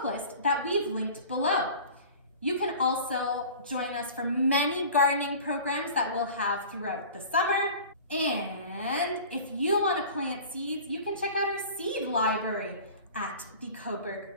list that we've linked below. You can also join us for many gardening programs that we'll have throughout the summer. And if you want to plant seeds, you can check out our seed library at the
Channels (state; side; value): inverted; both; correlation -0.41